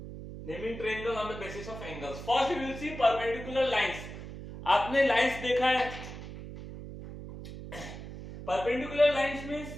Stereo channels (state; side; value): noise; right; hum, 11 dB below the sound